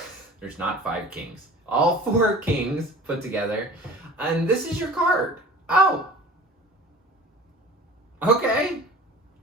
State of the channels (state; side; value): normal; both; correlation 0.42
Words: there's not five kings. All four kings put together. And this is your card. Oh. Okay.